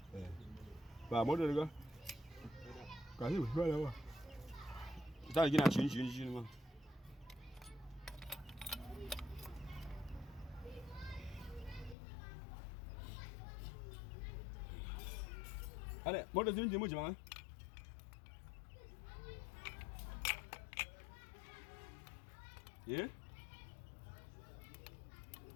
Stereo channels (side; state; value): right; drops out; at 12.0 s